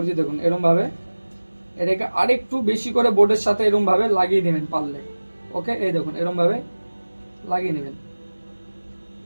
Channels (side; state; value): both; inverted; correlation -1.00